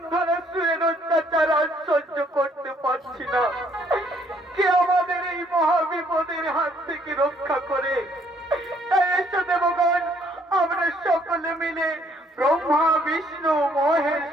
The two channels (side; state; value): both; normal; correlation 0.66